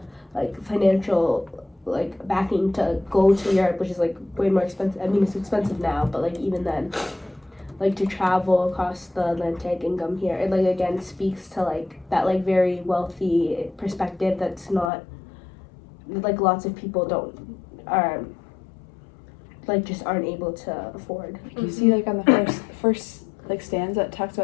like financial like backing to go to Europe, which is like way more expensive. I mean it's expensive now, but like even then, like to travel across the Atlantic and come here, it like again speaks to like that like very wealthy perspective that's not like lots of people like just aren't able to afford. You see like on the first like stanza it talks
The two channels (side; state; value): right; drops out; at 14.9 s